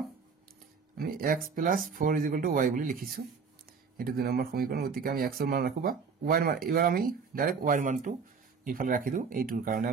আমি x + 4 = y বুলি লিখিছো এটো 2 নম্বৰ সমীকৰণ গতিকে আমি x ৰ মান ৰাখবা y ৰ মান এবাৰ আমি ডাইৰেক্ট y ৰ মানটো ইফালে ৰাখি দিও এইটোৰ কাৰণে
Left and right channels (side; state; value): left; quieter; 5.5 dB